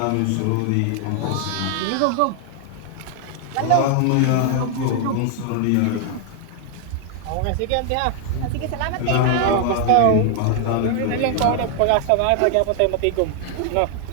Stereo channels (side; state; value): both; different; correlation 0.00